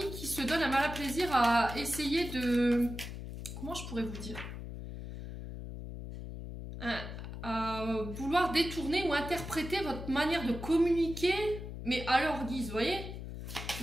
qui se donnent un malin plaisir à essayer de... Comment je pourrais vous dire? À vouloir détourner ou interpréter votre manière de communiquer, mais à leur guise, vous voyez?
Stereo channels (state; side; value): noise; left; hum, 8 dB below the sound